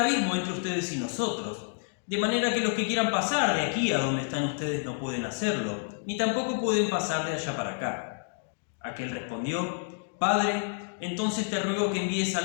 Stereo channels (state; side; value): silent; right; digital silence